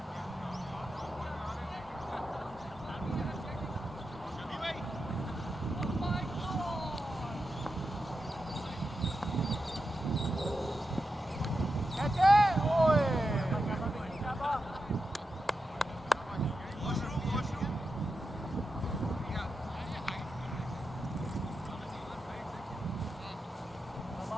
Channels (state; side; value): normal; both; correlation 0.88